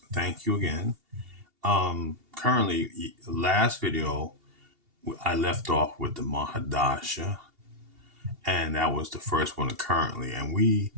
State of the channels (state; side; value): late; left; 2.8 ms